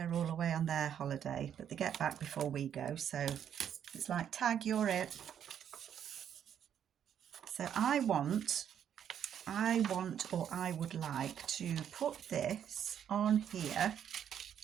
all away on their holiday, but they get back before we go. So it's like, tag, you're it. So I would like to put this on here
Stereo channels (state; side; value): quieter; left; 9.2 dB